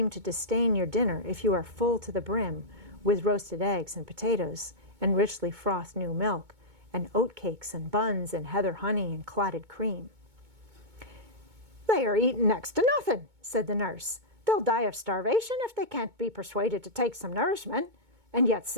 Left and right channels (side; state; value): left; late; 2.2 ms